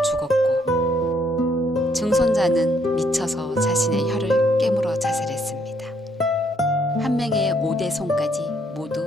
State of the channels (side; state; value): both; normal; correlation 0.70